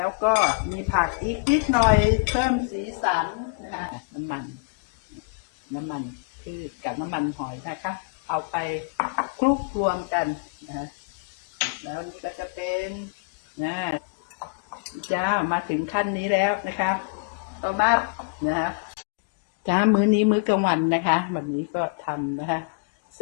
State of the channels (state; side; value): quieter; right; 33.6 dB